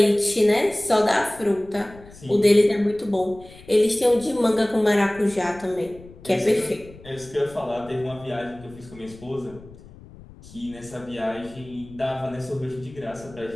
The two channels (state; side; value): noise; left; rumble, 20 dB below the sound